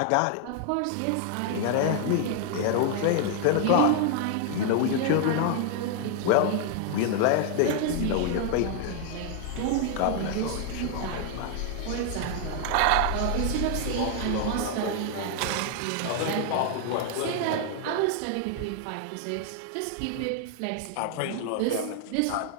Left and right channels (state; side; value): different; both; correlation 0.00